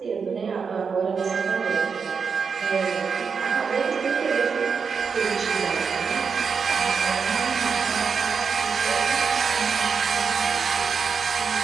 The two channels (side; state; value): left; quieter; 5.8 dB